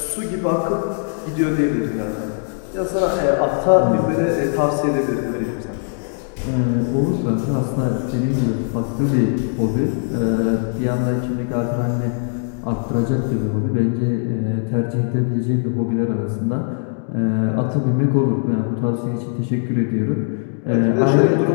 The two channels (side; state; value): right; silent; digital silence